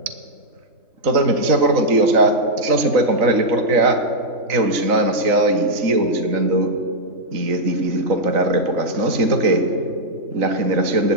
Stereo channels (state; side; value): late; left; 3.9 ms